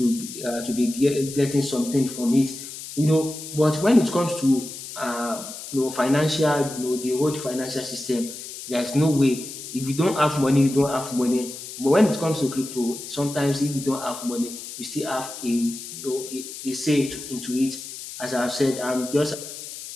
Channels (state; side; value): noise; left; hiss, 11 dB below the sound